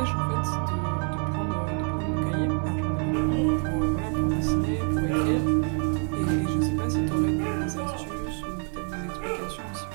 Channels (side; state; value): left; quieter; 39.9 dB